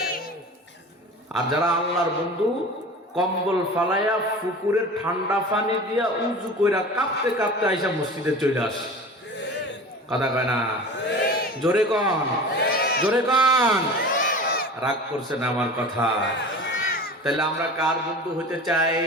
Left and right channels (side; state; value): both; normal; correlation 0.36